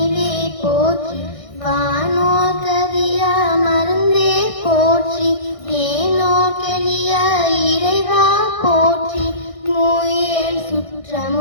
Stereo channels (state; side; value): late; right; 1.6 ms